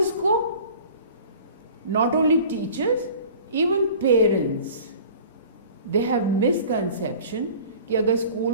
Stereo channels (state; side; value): inverted; both; correlation -0.44